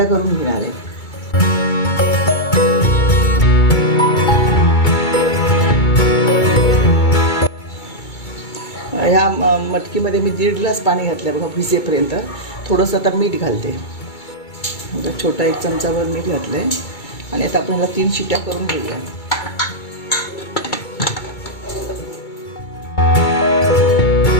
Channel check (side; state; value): right; late; 2.3 ms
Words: करून घेणार आहे। ह्या मटकीमध्ये मी 1.5 ग्लास पाणी घातलं बघा भिजेपर्यंत। थोडंसं आता मीठ घालते, छोटा 1 चमचाभर मीठ घातलं आहे आणि आता आपण ह्याला 3 शिट्ट्या करून घेऊया।